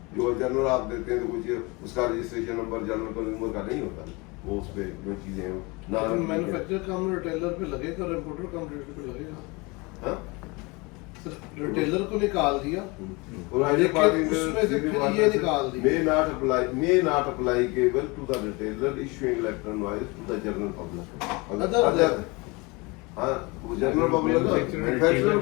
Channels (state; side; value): quieter; right; 26.4 dB